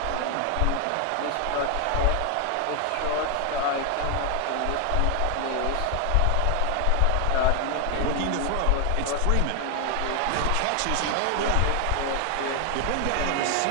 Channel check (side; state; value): both; different; correlation 0.00